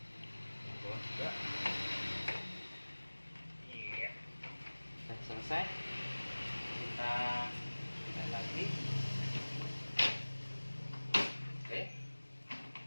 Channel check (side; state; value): both; inverted; correlation -1.00